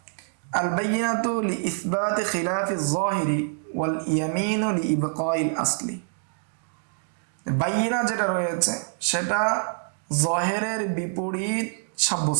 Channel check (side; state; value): left; silent; digital silence